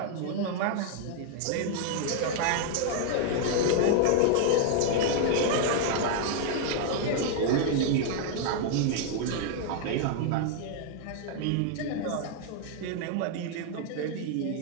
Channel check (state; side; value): different; both; correlation 0.00